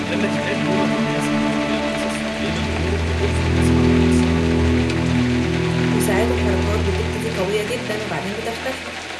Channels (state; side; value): identical; both; correlation 1.00